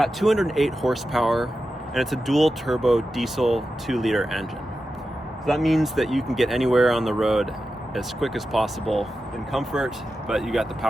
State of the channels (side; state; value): both; normal; correlation 0.91